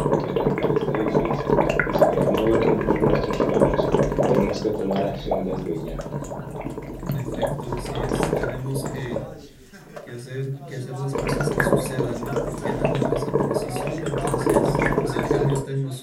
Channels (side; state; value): both; identical; correlation 1.00